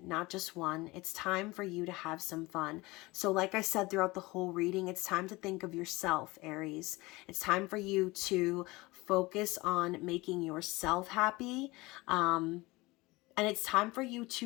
not just one. It's time for you to have some fun. So like I said throughout the whole reading, it's time to think of yourself, Aries. It's time for you to focus on making yourself happy. And it's time for you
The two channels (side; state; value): right; quieter; 21.9 dB